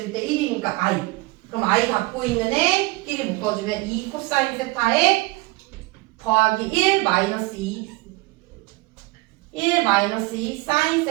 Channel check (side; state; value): left; quieter; 22.6 dB